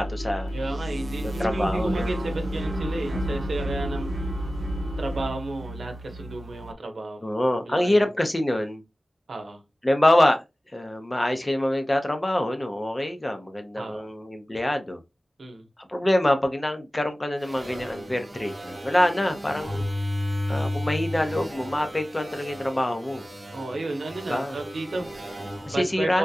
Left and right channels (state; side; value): normal; both; correlation 0.96